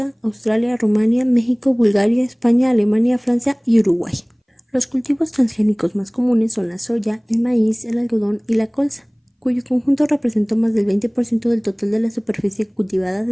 Australia, Rumania, México, Bulgaria, España, Alemania, Francia y Uruguay. Los cultivos transgénicos más comunes son la soya, el maíz, el algodón y la colza, cuyo conjunto representó más del 20% del total de la superficie cultivada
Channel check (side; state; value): both; identical; correlation 1.00